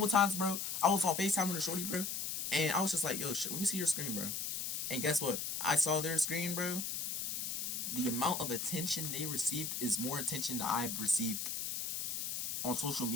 times, bro. I was on FaceTime with a shorty, bro, and I was just like, yo, shit, let me see your screen, bro. And guess what? I saw their screen, bro. The amount of attention they received is more attention that I've received on social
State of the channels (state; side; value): noise; left; hiss, 2 dB below the sound